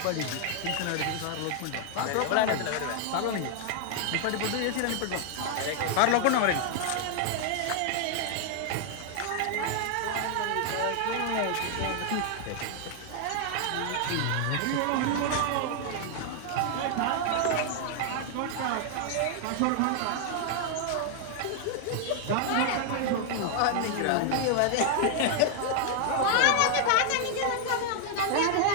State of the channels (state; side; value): different; both; correlation 0.00